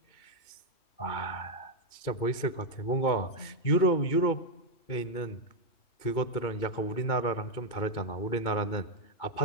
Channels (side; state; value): right; late; 2.3 ms